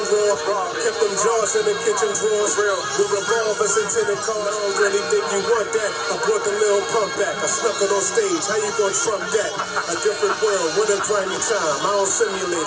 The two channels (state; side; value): identical; both; correlation 1.00